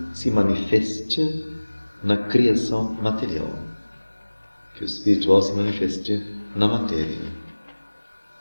se manifeste na criação material, que o espiritual se manifeste na matéria.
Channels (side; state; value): both; inverted; correlation -1.00